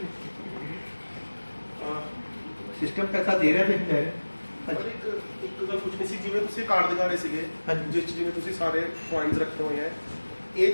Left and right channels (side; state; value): both; inverted; correlation -1.00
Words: ਸਿਸਟਮ ਪੈਸਾ ਦੇ ਰਿਹਾ ਤੇ ਲੈ ਰਿਹਾ। ਇੱਕ ਗੱਲ ਪੁੱਛਣੀ ਸੀ, ਜਿਵੇਂ ਤੁਸੀਂ ਕਾਰਡ ਦਿਖਾ ਰਹੇ ਸੀਗੇ ਜਿਸ 'ਚ ਜਿਵੇਂ ਤੁਸੀਂ ਸਾਰੇ ਪੁਆਇੰਟਸ ਰੱਖੇ ਹੋਏ ਹੈ, ਇਹ